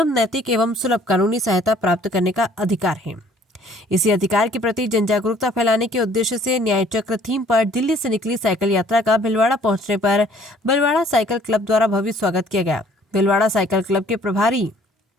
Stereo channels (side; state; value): both; normal; correlation 0.57